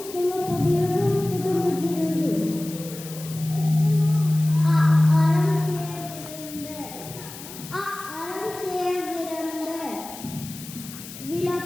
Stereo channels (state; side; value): noise; left; hiss, 14 dB below the sound